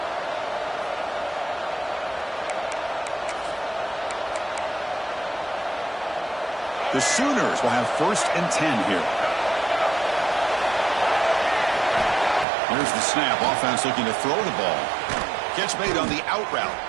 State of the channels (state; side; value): drops out; left; at 12.5 s